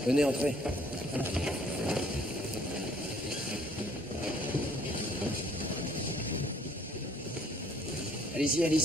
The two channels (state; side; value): normal; both; correlation 0.60